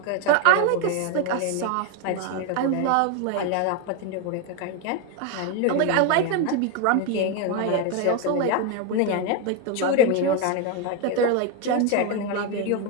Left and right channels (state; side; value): different; both; correlation 0.02